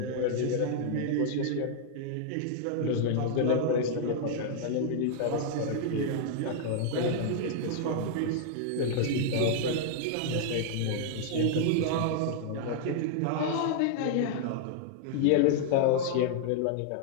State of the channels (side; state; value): both; different; correlation -0.01